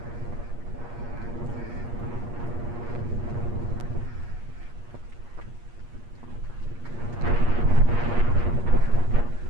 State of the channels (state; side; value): late; left; 8.5 ms